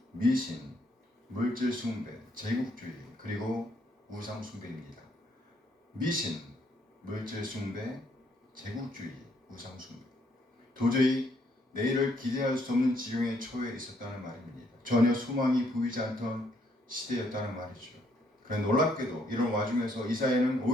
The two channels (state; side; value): normal; both; correlation 0.70